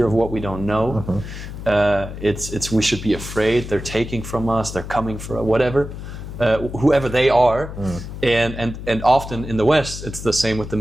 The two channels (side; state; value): left; noise; hum, 10 dB below the sound